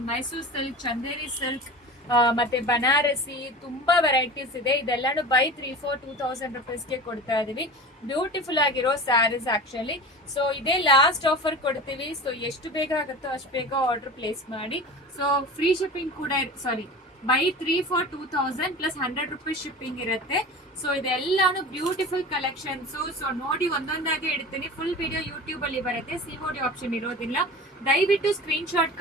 ಮೈಸೂರು ಸಿಲ್ಕ್, ಚಂದೇರಿ ಸಿಲ್ಕ್ ಮತ್ತೆ ಬನಾರಸಿ ತುಂಬಾ ವೆರೈಟೀಸ್ ಇದೆ. ಇದೆಲ್ಲಾನು ಬೈ 3 for 2000 rupeesಗೆ ಕೊಡ್ತಾ ಇದೀವಿ. ಬ್ಯೂಟಿಫುಲ್ ಆಗಿರೋ ಸ್ಯಾರೀಸ್ ಆಕ್ಚುಲಿ. ಸೊ ಇದೇ ಲಾಸ್ಟ್ ಆಫರ್ ಕೊಡ್ತೀವಿ. ಸೊ ಎಷ್ಟು ಬೇಗ ಆಗುತ್ತೋ ಅಷ್ಟು ಬೇಗ ಆರ್ಡರ್ ಪ್ಲೇಸ್ ಮಾಡಿ. ಸೊ ಫ್ರೀ ಶಿಪ್ಪಿಂಗ್ ಕೂಡ buy 3 for 2000 plus 100 rupees shipping ಇರುತ್ತೆ. ಸೊ ಇದೆಲ್ಲಾನು ಬ್ಯೂಟಿಫುಲ್ ಕಲೆಕ್ಷನ್ಸ್. ಸೊ ನೋಡಿ ಒಂದೊಂದಾಗಿ ಇಡ್ತೀನಿ. ಫುಲ್ ವಿಡಿಯೋ ಯೂಟ್ಯೂಬ್ ಅಲ್ಲಿ ಬರುತ್ತೆ, ಸಿಒಡಿ ಆಪ್ಷನ್ ಇರೋದಿಲ್ಲ. ದಯವಿಟ್ಟು ಸ್ಕ್ರೀನ್ ಶಾಟ್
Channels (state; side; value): normal; both; correlation 0.34